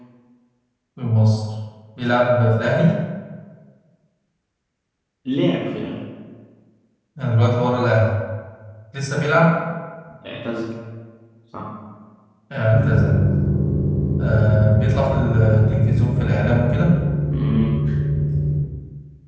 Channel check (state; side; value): identical; both; correlation 1.00